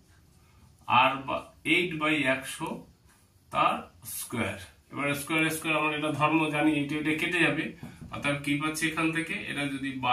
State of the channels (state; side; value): identical; both; correlation 1.00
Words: r/8/100 তার স্কয়ার। এবার স্কয়ার স্কয়ার আমরা এটা ধর্ম জানি, এটা এটা কেটে যাবে, অর্থাৎ কি পাচ্ছি এখান থেকে, এটা যদি বা